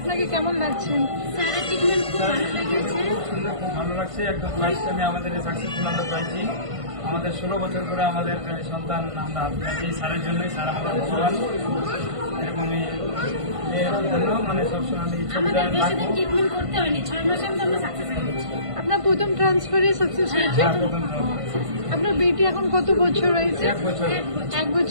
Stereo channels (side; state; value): left; late; 1.5 ms